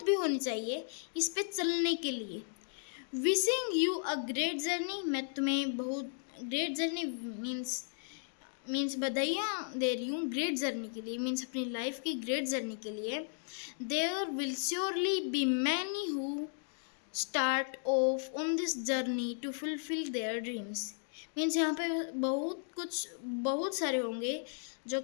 भी होनी चाहिए इस पे चलने के लिए। Wishing you a great journey, मैं तुम्हें बहुत ग्रेट जर्नी मीन्स बधाइयाँ दे रही हूँ ग्रेट जर्नी के लिए, मीन्स अपनी लाइफ की ग्रेट जर्नी के लिए। There will surely be many who start off on this journey to fulfil their dreams, means यहाँ पे बहुत सारे होंगे जो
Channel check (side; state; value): right; silent; digital silence